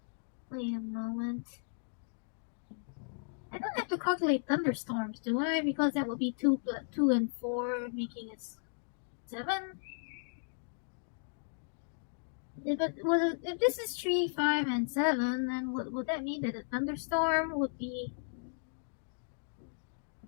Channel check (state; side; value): silent; right; digital silence